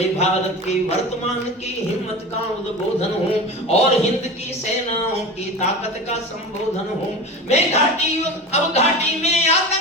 भारत के वर्तमान की हिम्मत का उद्बोधन हूँ और हिंद की सेनाओं की ताकत का संबोधन हूँ। मैं अब घाटी में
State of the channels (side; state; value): both; normal; correlation 0.30